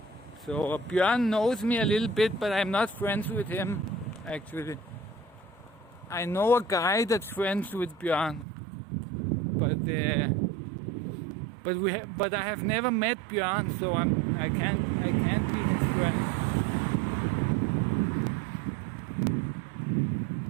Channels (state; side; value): drops out; left; at 8.5 s